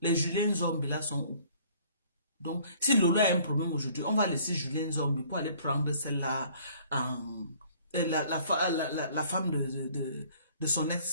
les Julien Zombie là sont où? Donc, si Lolo a un problème aujourd'hui, on va laisser Julien Zombie pour aller prendre celle-là, la femme de son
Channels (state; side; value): inverted; both; correlation -0.56